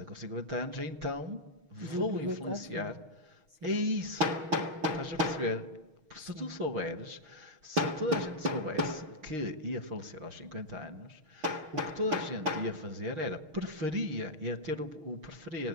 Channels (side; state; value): left; late; 6.4 ms